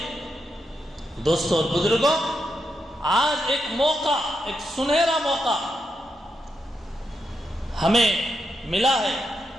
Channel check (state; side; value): normal; both; correlation 0.84